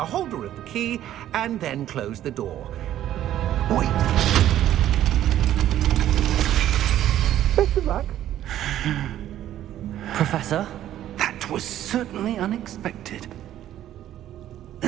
holder of the key and then close the door. Wait! Best of luck. Professor? That was certainly unexpected.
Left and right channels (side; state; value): left; quieter; 12.2 dB